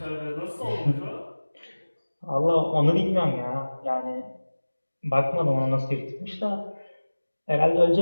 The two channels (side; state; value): both; inverted; correlation -1.00